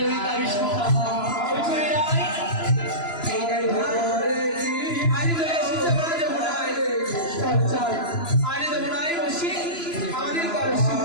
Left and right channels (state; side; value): late; right; 3.0 ms